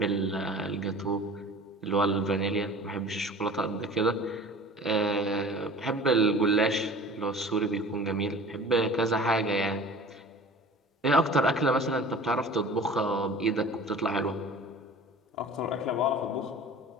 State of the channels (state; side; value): normal; both; correlation 0.42